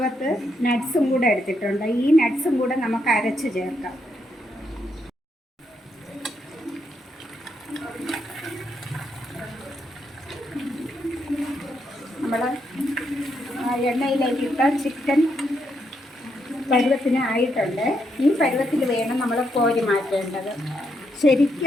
നട്ട്സും കൂടെ എടുത്തിട്ടുണ്ട്. ഈ നട്ട്സും കൂടെ നമുക്ക് അരച്ച് ചേർക്കാം. നമ്മൾ എണ്ണയിലേക്ക് ഇട്ട ചിക്കൻ പരുവത്തിന് ആയിട്ടുണ്ട്. ഈ പരുവത്തിൽ വേണം നമ്മൾ കോരി മാറ്റേണ്ടത്.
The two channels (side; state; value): both; normal; correlation 0.78